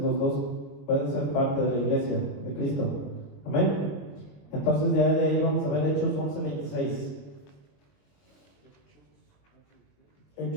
dos pueden ser parte de la iglesia de Cristo. Amén. Entonces, de ahí vamos a ver Hechos 11:26.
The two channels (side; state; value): right; late; 21 ms